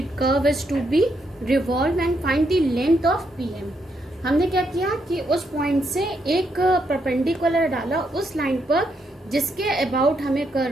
curve is to be revolve and find the length of pm. हमने क्या किया कि उस पॉइंट से एक परपेंडिकुलर डाला उस लाइन पर जिसके अबाउट हमें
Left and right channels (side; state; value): both; normal; correlation 0.78